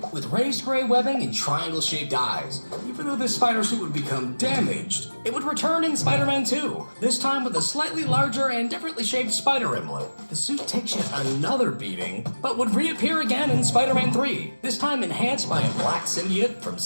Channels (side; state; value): both; inverted; correlation -1.00